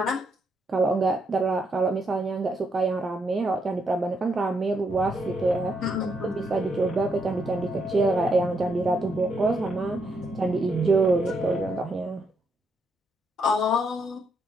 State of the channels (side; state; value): both; normal; correlation 0.77